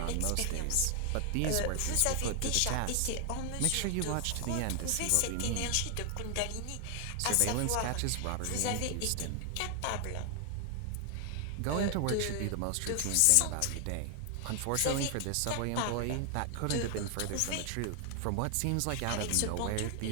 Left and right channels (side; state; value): both; different; correlation 0.00